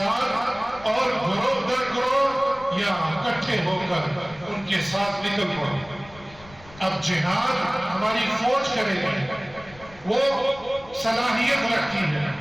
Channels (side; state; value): left; noise; rumble, 22 dB below the sound